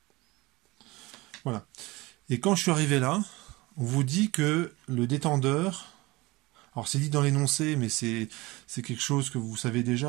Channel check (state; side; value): quieter; left; 21.8 dB